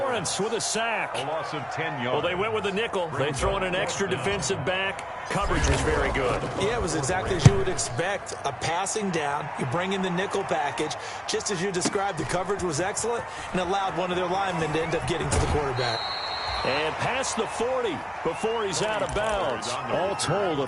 with a sack. A loss of 10 yards. Well, they went with the nickel. They throw in an extra defensive back. Coverage was very good. Yeah, it was exactly as you would expect. A passing down. You bring in the nickel package. Just as you described, the coverage was excellent and allowed one of their linemen to end up getting to the quarterback. And past the 40 before he's out of bounds. All told, a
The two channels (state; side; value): identical; both; correlation 1.00